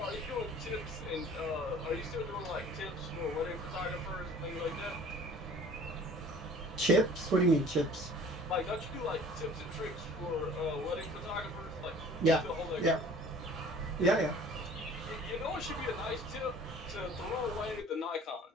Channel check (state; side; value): normal; both; correlation 0.49